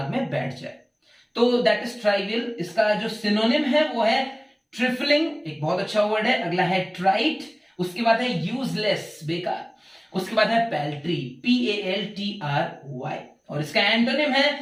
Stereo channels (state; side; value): identical; both; correlation 1.00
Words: में बैठ जाए। तो दैट इज ट्राइवियल। इसका जो सिनोनिम है वो है ट्रिफलिंग, एक बहुत अच्छा वर्ड है। अगला है ट्राइट, उसके बाद है यूजलेस, बेकार। उसके बाद है पैल्ट्री, PALTRY, और इसका एंटोनिम